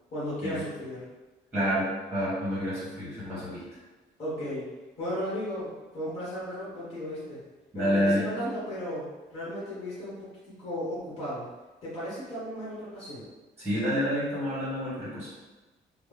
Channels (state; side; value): normal; both; correlation 0.55